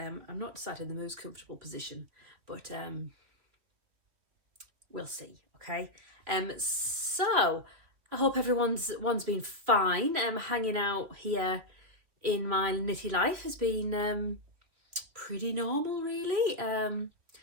not sat in the most comfortable position, but we'll see, okay? So I hope everyone's been fine. Hanging out here in my knitty life has been pretty normal, really.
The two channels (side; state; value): left; late; 3.1 ms